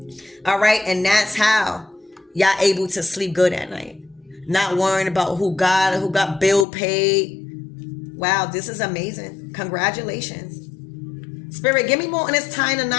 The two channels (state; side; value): drops out; right; at 6.7 s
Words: All right? And that's how y'all able to sleep good at night. Not worrying about who got bill paid. Wow, this is amazing. Congratulations. Spirit, give me more on this tying a